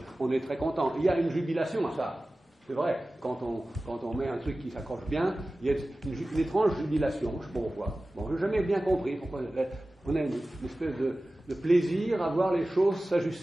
on est très content. Il y a une jubilation à ça. C'est vrai, quand on met un truc qui s'accroche bien, il y a une étrange jubilation, je ne sais pas pourquoi. Bon, je n'ai jamais bien compris pourquoi on a une espèce de plaisir à voir les choses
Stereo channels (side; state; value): both; normal; correlation 0.96